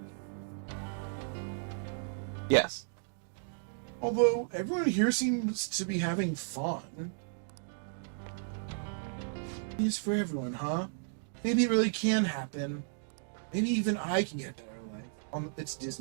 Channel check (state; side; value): silent; left; digital silence